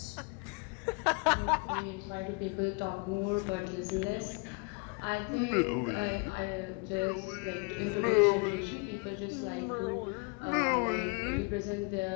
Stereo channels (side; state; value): right; quieter; 32.0 dB